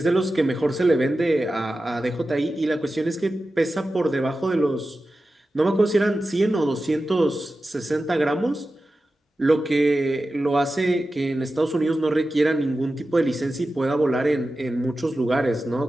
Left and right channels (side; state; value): both; normal; correlation 0.93